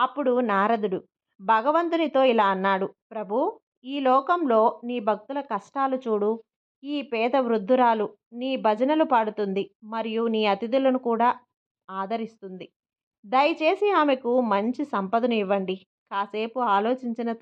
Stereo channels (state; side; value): identical; both; correlation 1.00